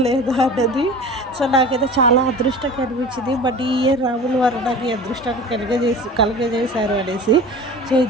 లేదా అన్నది. సో నాకైతే చాలా అదృష్టంగా అనిపించింది. బట్ ఈ ఇయర్ రాముల వారు నాకు ఈ అదృష్టాన్ని కలుగజేశారు అనేసి. సో ఈ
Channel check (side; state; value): both; normal; correlation 0.37